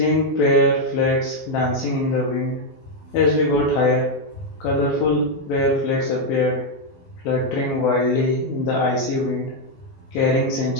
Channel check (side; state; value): right; late; 12 ms